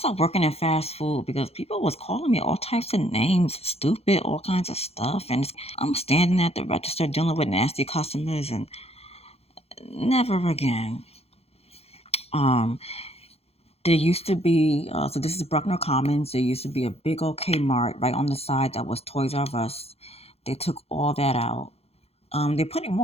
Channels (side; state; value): right; late; 0.29 ms